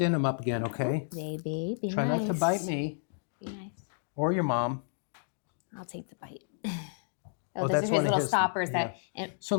him up again, okay? Baby, be Try nice. not to bite me Be nice. or your mom. I'll take the bite. Oh, Those that's are his one of little his- stoppers yeah. that. And, So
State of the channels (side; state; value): right; silent; digital silence